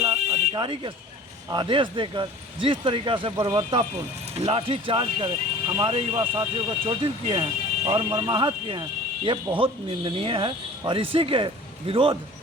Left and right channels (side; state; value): both; normal; correlation 0.44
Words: के आदेश देकर जिस तरीक़ा से बर्बरतापूर्ण लाठी चार्ज कर हमारे युवा साथियों को चोटिल किए हैं और मरमाहत किए हैं, ये बहुत निंदनीय है। और इसी के विरोध